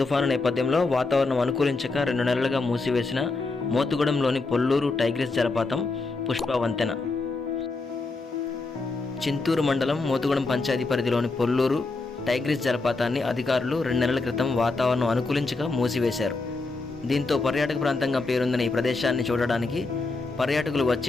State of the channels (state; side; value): quieter; right; 3.6 dB